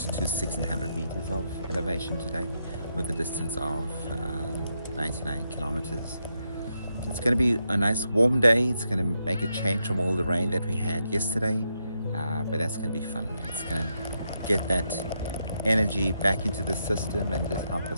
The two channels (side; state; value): both; inverted; correlation -0.82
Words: to 1600 meters of elevation today with a distance of 99 kilometers. It's going to be a nice warm day. It's going to make a change from all the rain that we had yesterday, but that's going to be fun. It's going to get that energy back into the system and just help